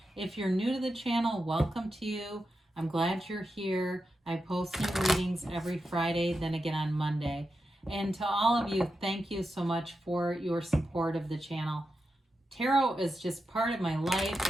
If you're new to the channel, welcome to you. I'm glad you're here. I post new readings every Friday, then again on Monday. And to all of you, thank you so much for your support of the channel. Tarot is just part of my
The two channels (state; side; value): normal; both; correlation 0.89